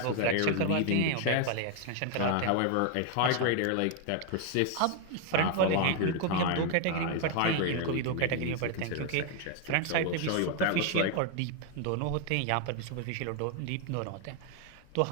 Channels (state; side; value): different; both; correlation 0.01